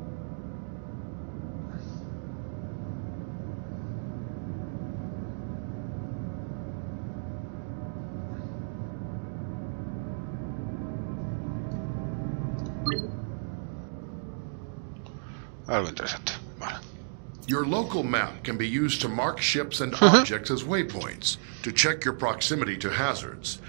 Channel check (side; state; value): left; silent; digital silence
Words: Algo interesante. Vale. Your local map can be used to mark ships and objects as waypoints, to check your proximity to hazards,